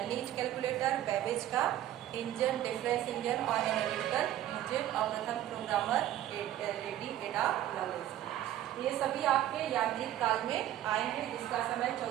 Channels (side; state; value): left; quieter; 12.8 dB